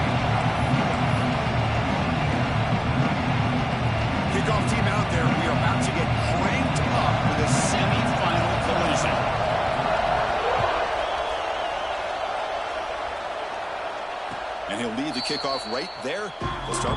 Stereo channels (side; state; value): both; identical; correlation 1.00